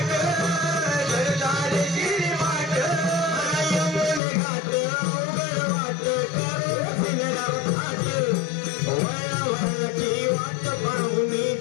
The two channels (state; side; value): drops out; right; at 4.2 s